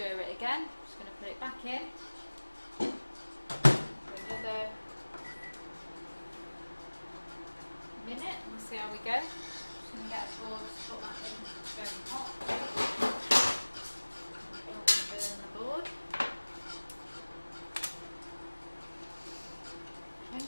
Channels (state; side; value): inverted; both; correlation -1.00